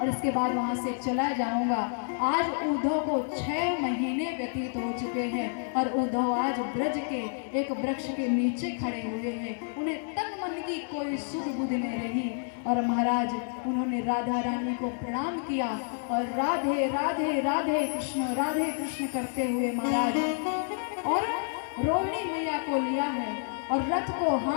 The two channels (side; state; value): right; silent; 58 dB below the other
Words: इसके बाद वहां से चला जाऊंगा। आज उद्धव को 6 महीने व्यतीत हो चुके हैं और उद्धव आज ब्रज के एक वृक्ष के नीचे खड़े हुए हैं। उन्हें तन मन की कोई सुध बुध नहीं रही और महाराज उन्होंने राधा रानी को प्रणाम किया और राधे राधे राधे कृष्ण करते हुए महाराज और रोहिणी मैया को लिया है और रथ को